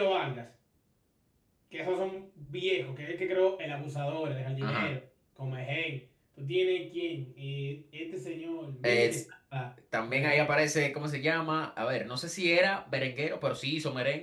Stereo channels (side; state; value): both; identical; correlation 1.00